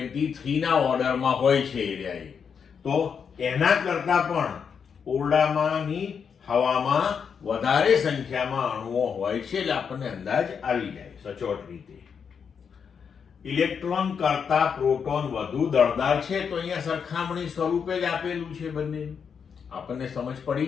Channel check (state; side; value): quieter; right; 6.7 dB